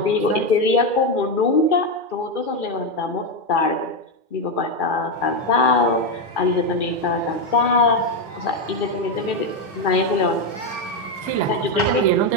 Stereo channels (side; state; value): right; late; 2.4 ms